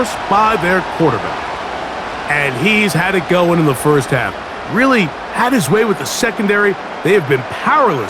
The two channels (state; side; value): identical; both; correlation 1.00